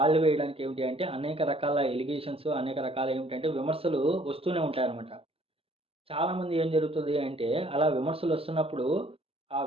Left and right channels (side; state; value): left; late; 0.28 ms